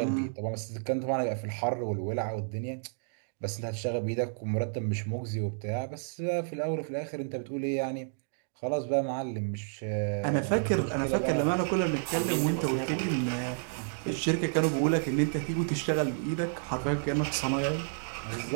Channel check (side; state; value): left; silent; digital silence